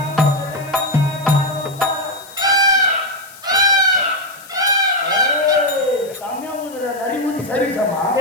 செம்மையா ஊதுற நரி ஊதி சர்வீஸாமா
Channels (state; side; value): noise; left; hiss, 20 dB below the sound